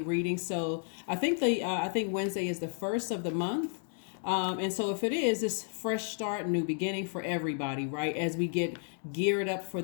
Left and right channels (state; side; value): silent; right; 56 dB below the other